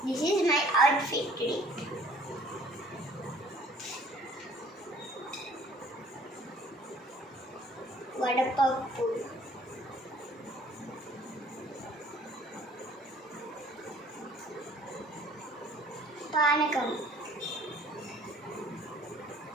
This is my outfit today. వడపప్పు, పానకం,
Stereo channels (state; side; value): normal; both; correlation 0.55